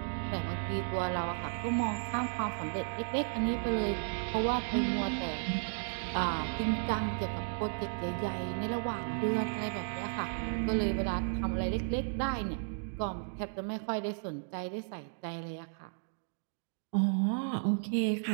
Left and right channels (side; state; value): left; silent; digital silence